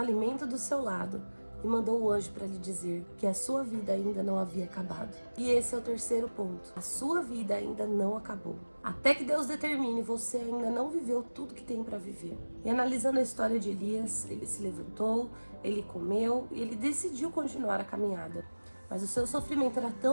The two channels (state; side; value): inverted; both; correlation -1.00